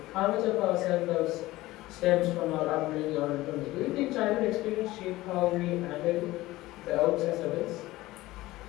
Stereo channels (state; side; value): quieter; right; 17.9 dB